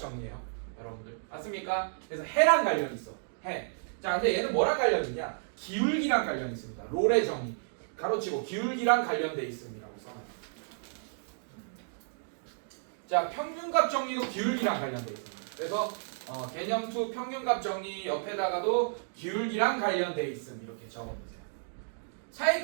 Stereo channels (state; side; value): silent; left; digital silence